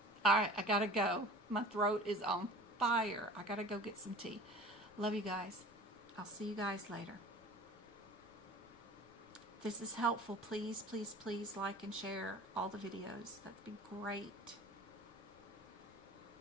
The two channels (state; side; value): noise; left; rumble, 27 dB below the sound